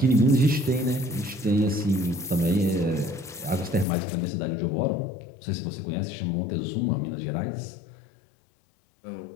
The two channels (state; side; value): drops out; right; at 3.9 s